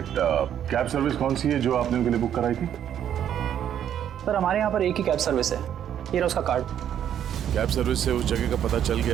कैब सर्विस कौन सी है जो आपने उनके लिए बुक कराई थी? सर हमारे यहाँ पर एक ही कैब सर्विस है, ये रहा उसका कार्ड। कैब सर्विस से उस जगह का पता चल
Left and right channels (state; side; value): quieter; left; 9.9 dB